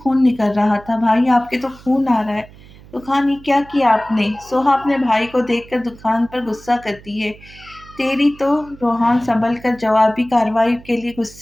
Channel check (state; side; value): noise; right; hum, 22 dB below the sound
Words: निकल रहा था। भाई आपके तो खून आ रहा है। दुखान, ये क्या किया आपने? सोहा अपने भाई को देखकर दुखान पर गुस्सा करती है। तेरी तो। रोहान संभल कर जवाबी कार्रवाई के लिए